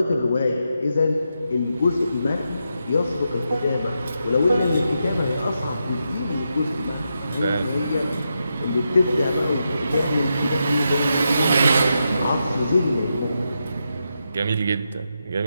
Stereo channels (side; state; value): both; inverted; correlation -0.85